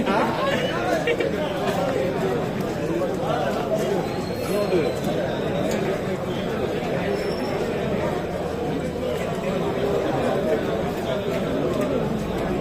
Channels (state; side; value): identical; both; correlation 1.00